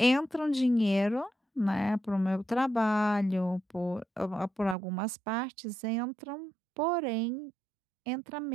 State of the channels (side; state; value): left; drops out; at 4.8 s